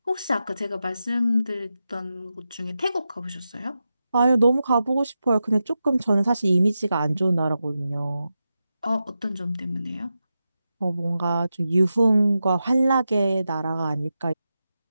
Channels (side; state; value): both; inverted; correlation -0.90